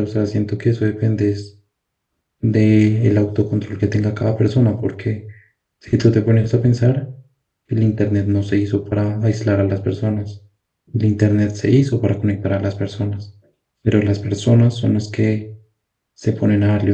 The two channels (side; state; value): both; identical; correlation 1.00